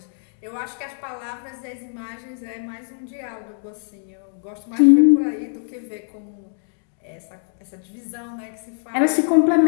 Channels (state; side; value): silent; right; digital silence